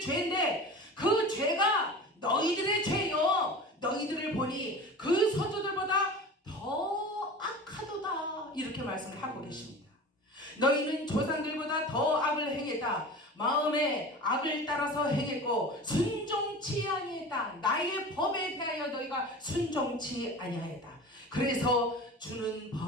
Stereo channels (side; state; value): both; normal; correlation 0.35